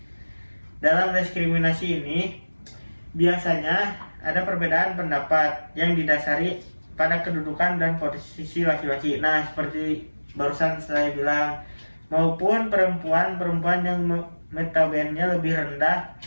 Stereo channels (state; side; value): inverted; both; correlation -1.00